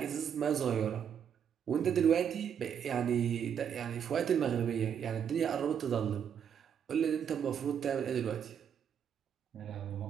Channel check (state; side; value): quieter; left; 8.2 dB